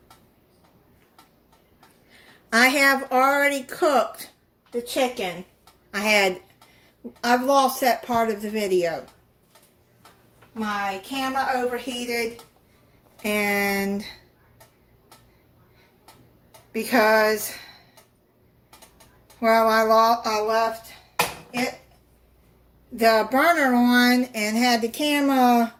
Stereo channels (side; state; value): both; identical; correlation 1.00